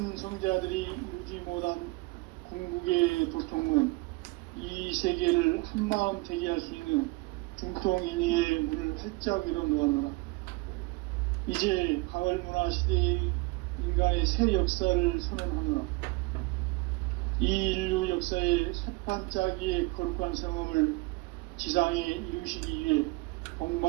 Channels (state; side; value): quieter; left; 24.5 dB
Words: 이루지 못한 궁극의 도통은 이 세계를 한마음 되게 할 수 있는 중통인의의 문을 활짝 열어놓아노라. 이제 가을 문화 시대의 인간의 새 역사를 선언하노라. 이 인류 역사의 새판짜기의 거룩한 성음을 지상에 이루시기 위해